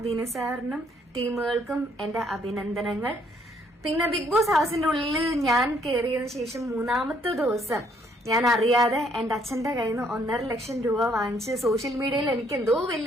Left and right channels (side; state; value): both; normal; correlation 0.67